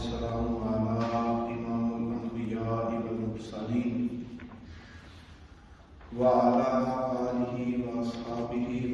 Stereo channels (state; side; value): identical; both; correlation 1.00